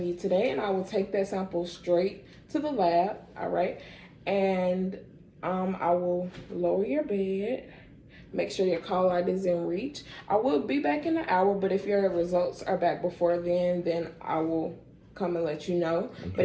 you today, and I will take that sample straight to the lab, all right? And I will lower your bed, make sure your call light is in reach. I will be back in an hour, but if your results are back before then I will come and let you know. Okay. But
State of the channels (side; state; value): both; identical; correlation 1.00